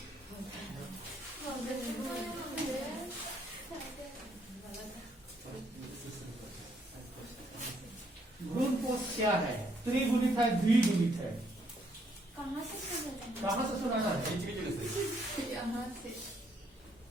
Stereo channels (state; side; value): normal; both; correlation 0.70